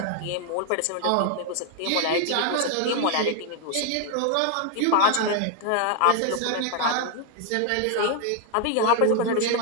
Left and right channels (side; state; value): both; different; correlation 0.00